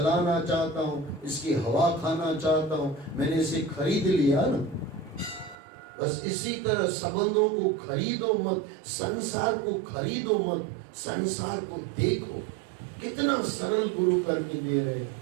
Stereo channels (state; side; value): drops out; left; at 5.6 s